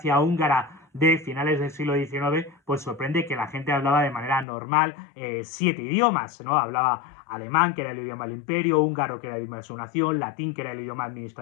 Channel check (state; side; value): drops out; right; at 4.5 s